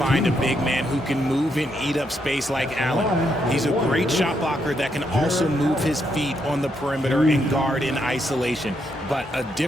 a big man who can move and eat up space like Allen. He's a great shot blocker that can also move his feet on the perimeter and guard in isolation. But a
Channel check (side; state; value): both; normal; correlation 0.78